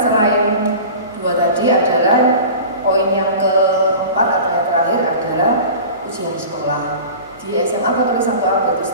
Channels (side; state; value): both; inverted; correlation -0.37